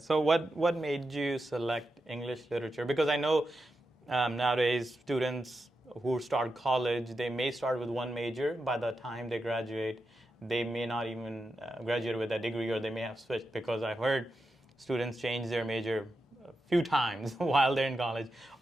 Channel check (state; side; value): normal; both; correlation 0.88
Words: So what made you select English literature? Because I know nowadays students who start college, they may start with one major. By the time they graduate, they may not even graduate with that degree, or they may have switched, because I've heard students change their major a few times while they're in college.